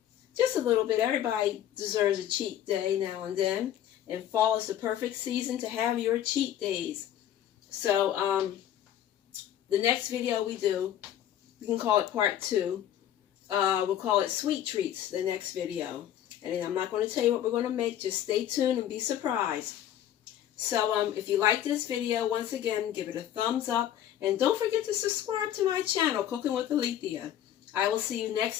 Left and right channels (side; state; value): right; quieter; 11.1 dB